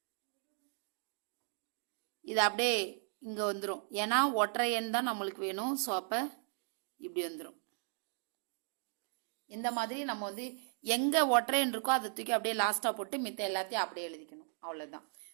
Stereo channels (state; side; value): silent; left; 53 dB below the other